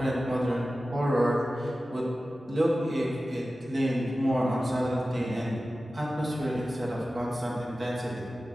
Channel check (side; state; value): both; normal; correlation 0.95